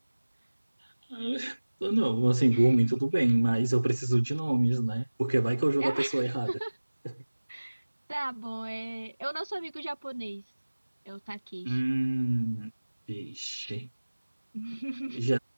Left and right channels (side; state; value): both; inverted; correlation -1.00